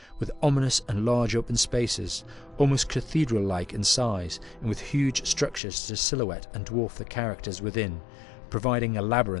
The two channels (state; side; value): drops out; right; at 5.6 s